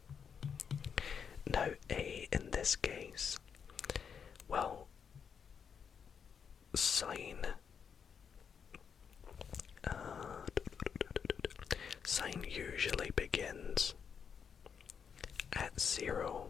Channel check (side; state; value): right; quieter; 6.9 dB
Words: Now a in this case, well, sine usually begins at 0,